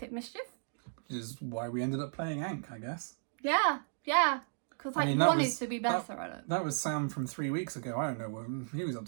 Mischief. Which is why we ended up playing Ankh, I guess. Yeah. Because I wanted to be better at it. That was Sam from 3 weeks ago. I don't know. He was up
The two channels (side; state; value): left; silent; digital silence